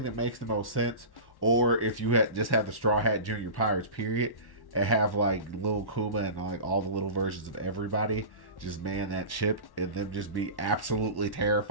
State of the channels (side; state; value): right; late; 1.1 ms